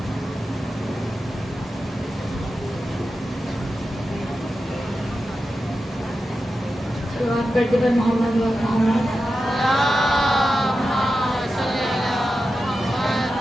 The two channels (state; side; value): normal; both; correlation 0.91